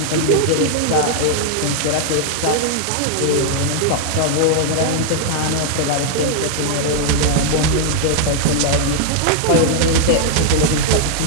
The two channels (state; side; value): different; both; correlation -0.01